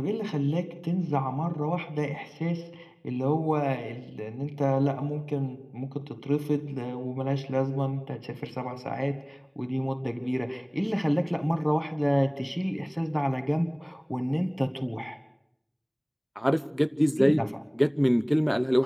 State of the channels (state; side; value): identical; both; correlation 1.00